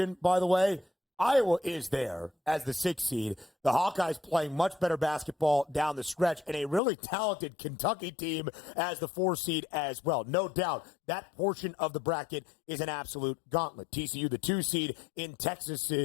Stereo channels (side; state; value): right; drops out; at 6.8 s